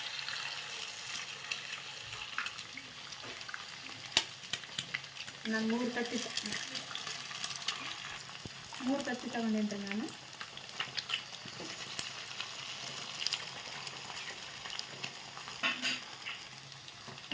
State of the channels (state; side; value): identical; both; correlation 1.00